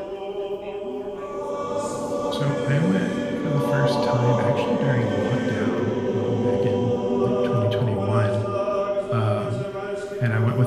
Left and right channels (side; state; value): both; identical; correlation 1.00